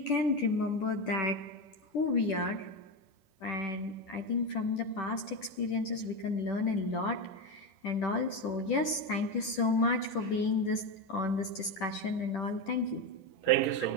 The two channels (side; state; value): right; late; 10 ms